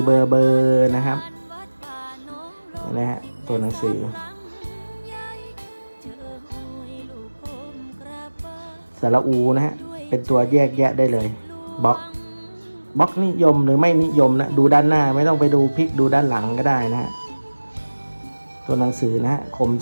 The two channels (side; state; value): both; inverted; correlation -1.00